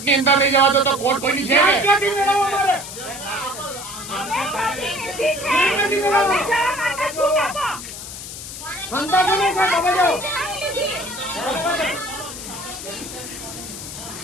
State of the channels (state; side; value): noise; left; hiss, 10 dB below the sound